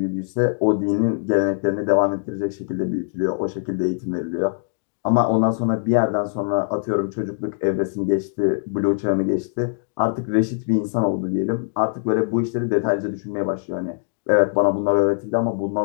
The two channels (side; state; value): right; silent; digital silence